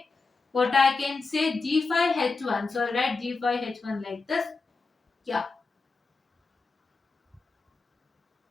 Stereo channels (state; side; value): quieter; right; 4.0 dB